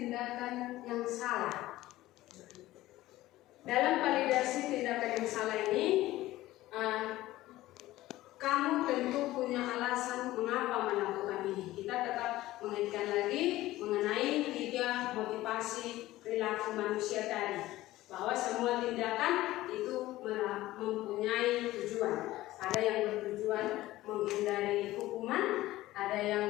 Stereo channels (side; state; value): right; quieter; 16.5 dB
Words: yang salah. Dalam validasi tindakan yang salah ini, kamu tentu punya alasan mengapa melakukan ini. Kita tetap mengaitkan lagi mengenai 3 motivasi perilaku manusia tadi, bahwa semua tindakan itu mempunyai tujuan. Ada yang bertujuan menghindari hukuman, ada